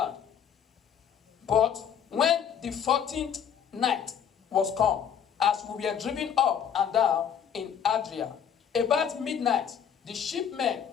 But when the 14th night was come, as we were driven up and down in Adria, about midnight, the shipmen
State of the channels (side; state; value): right; quieter; 8.2 dB